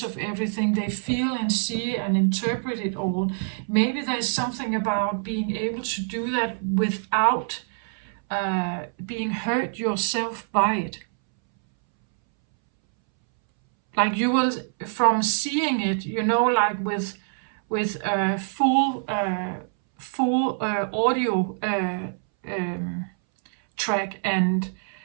of everything. They feel and see and interpret it all. Maybe there's something about being able to do that without being hurt yourself by it. Like you will, from seeing it, like with full audio track and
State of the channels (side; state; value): left; silent; 62 dB below the other